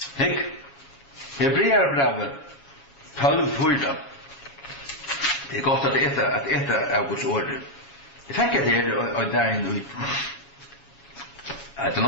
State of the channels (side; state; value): right; late; 7.2 ms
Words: Hek. Hebreerbrevet 12:4. Det är gott att äta av Guds ord. Jag tänker att det är där nu. Att det